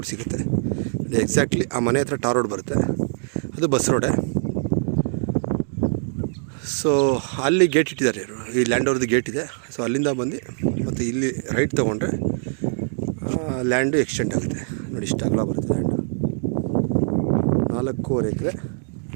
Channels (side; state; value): left; silent; 63 dB below the other